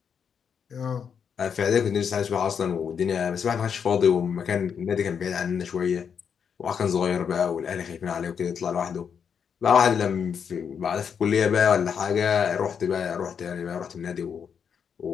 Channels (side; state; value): right; quieter; 7.1 dB